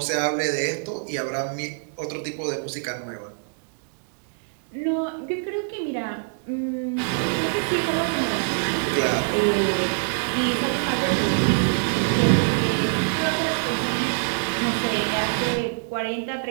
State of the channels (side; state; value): left; silent; digital silence